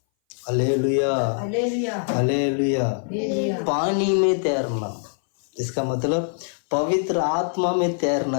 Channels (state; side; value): silent; right; 59 dB below the other